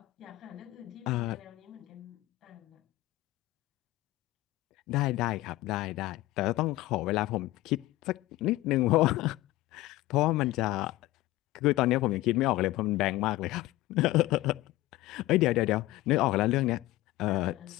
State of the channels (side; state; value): right; quieter; 17.6 dB